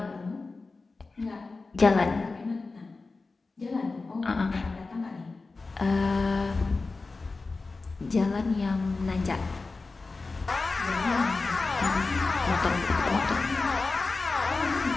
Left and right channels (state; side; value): quieter; right; 3.8 dB